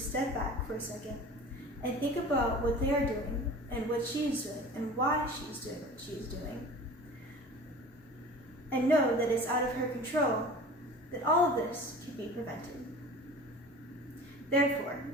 step back for a second and think about what they are doing and what she is doing and why she's doing what she is doing, and know that it's out of her control, that all of this can be prevented. Therefore,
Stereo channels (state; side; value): normal; both; correlation 0.39